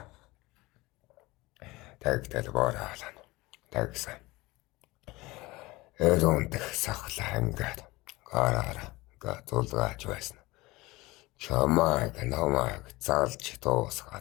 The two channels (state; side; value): quieter; right; 21.3 dB